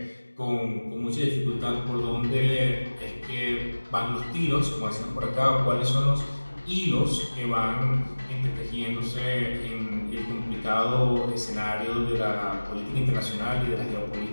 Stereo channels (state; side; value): inverted; both; correlation -1.00